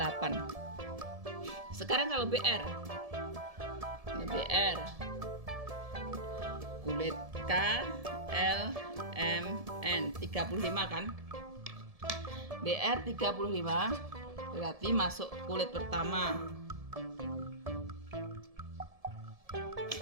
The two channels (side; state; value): left; late; 1.7 ms